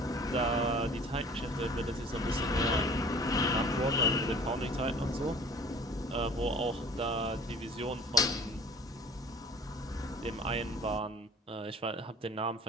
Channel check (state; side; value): normal; both; correlation 0.47